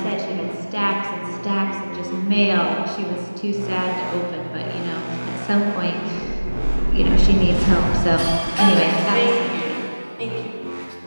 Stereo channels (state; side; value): inverted; both; correlation -1.00